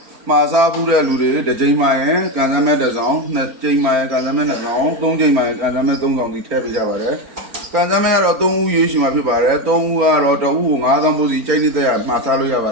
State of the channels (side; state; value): left; late; 4.4 ms